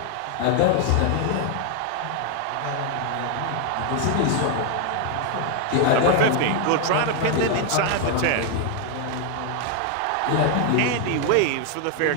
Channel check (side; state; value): both; different; correlation 0.00